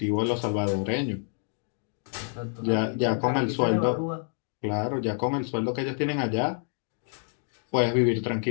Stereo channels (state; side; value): silent; right; 60 dB below the other